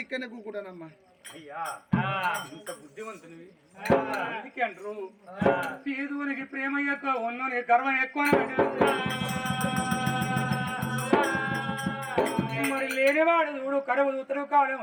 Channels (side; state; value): both; identical; correlation 1.00